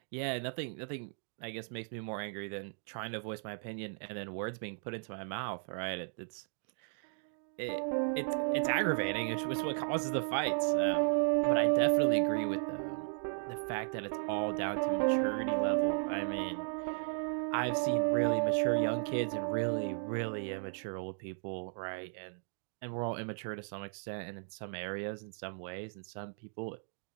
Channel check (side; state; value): left; silent; 54 dB below the other